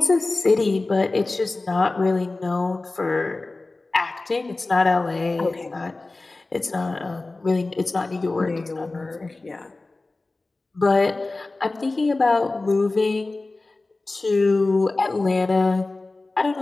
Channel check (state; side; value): quieter; right; 3.2 dB